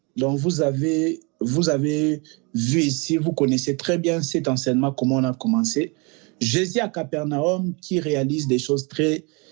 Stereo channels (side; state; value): left; quieter; 30.5 dB